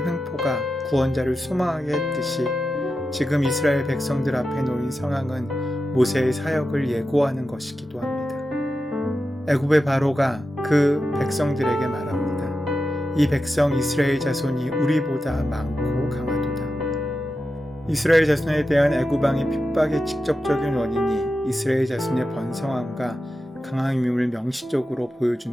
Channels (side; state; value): both; normal; correlation 0.91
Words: 횡포가 구원자를 소망하게 했듯이 지금 이스라엘 백성들 앞에 놓인 상황은 모세의 사역을 예고하는 것이기도 합니다. 애굽의 바로가 그 백성들에게 말합니다. 이 백성 이스라엘 자손이 우리보다 많고 강하도다. 이스라엘 자손에 대한 애굽 왕의 핍박의 직접적인 원인이 이스라엘 자손의 번성함과 강함임을 명시적으로